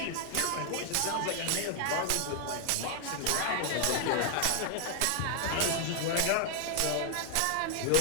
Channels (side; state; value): both; different; correlation 0.00